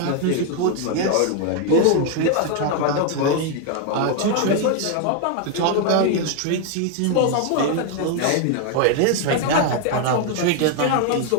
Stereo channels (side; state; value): both; different; correlation 0.01